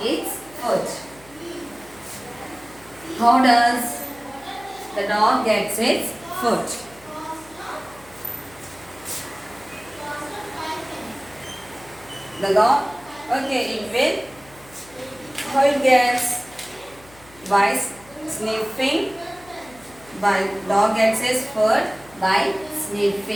food? How does the dog gets its food? The dog, okay, it will, how it gets? By sniffing. By dog gets its food by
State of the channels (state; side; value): noise; left; hum, 24 dB below the sound